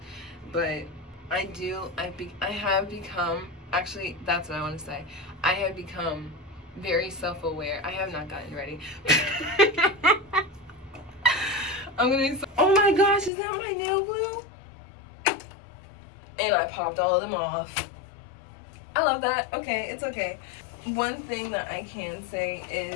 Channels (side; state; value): right; drops out; at 13.3 s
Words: But I have become, actually, that's what I want to say. I have become very self-aware. I have not gotten ready. I'm gonna be oh my gosh, is that my nail glue? And I popped all of them off. I love that. Okay, it's okay. One thing that I can say